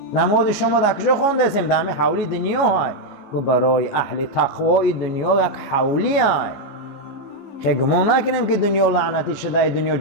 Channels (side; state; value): right; late; 14 ms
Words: نماز شما در کجا خوندستین؟ در همین حولی دنیا های. گفت برای اهل تقوای دنیا یک حولی های. خیلی گمان نکنیم که دنیا لعنتی شده، دنیا